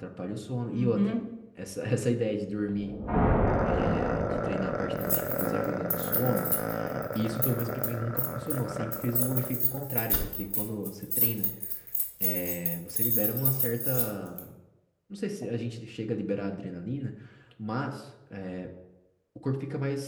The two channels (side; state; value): both; identical; correlation 1.00